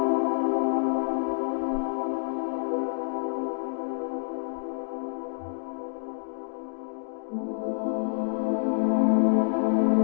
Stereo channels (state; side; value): silent; right; digital silence